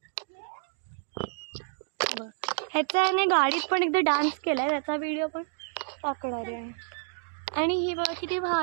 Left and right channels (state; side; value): silent; left; digital silence